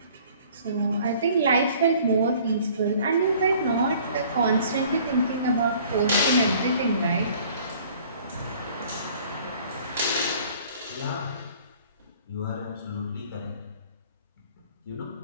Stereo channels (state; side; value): inverted; both; correlation -0.53